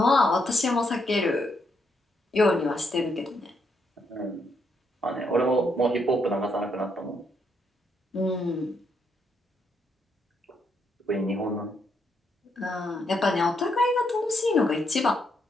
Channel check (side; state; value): both; normal; correlation 0.77